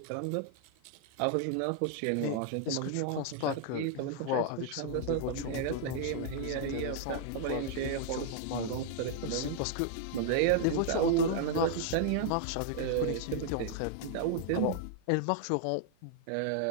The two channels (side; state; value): both; different; correlation 0.00